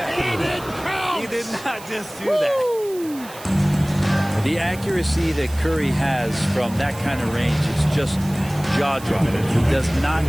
He did not just do that. The accuracy that Curry has from that kind of range is just jaw-dropping. He does not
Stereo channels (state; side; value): noise; right; hiss, 18 dB below the sound